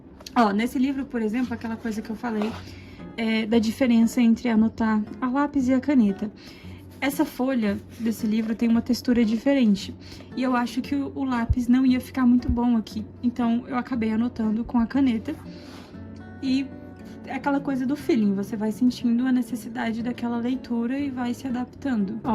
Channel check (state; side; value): identical; both; correlation 1.00